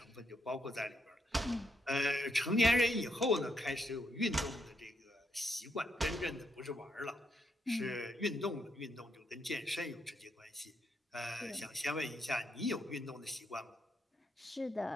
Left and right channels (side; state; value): both; normal; correlation 0.78